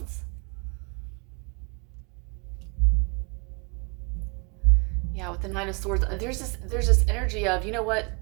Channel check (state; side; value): quieter; left; 35.6 dB